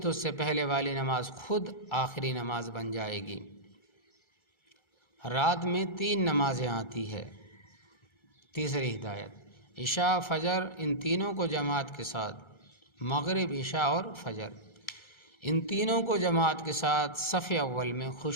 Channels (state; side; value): late; right; 1.3 ms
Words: اس سے پہلے والی نماز خود آخری نماز بن جائے گی۔ رات میں 3 نمازیں آتی ہے۔ تیسری ہدایت، عشاء فجر ان تینوں کو جماعت کے ساتھ، مغرب عشاء اور فجر ان تینوں کو جماعت کے ساتھ صف اول میں